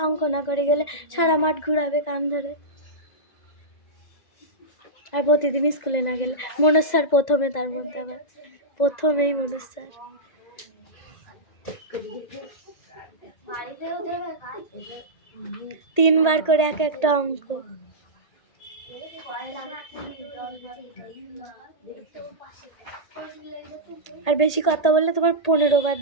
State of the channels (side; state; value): right; late; 1.8 ms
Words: অঙ্ক না করে গেলে সারা মাঠ ঘুরাবে কান ধরে। আর প্রতিদিন স্কুলে না গেলে মনোজ স্যার প্রথমে, তার মধ্যে আবার প্রথমেই মনোজ স্যার। তিনবার করে এক একটা অঙ্ক। আর বেশি কথা বললে তোমার 15 বার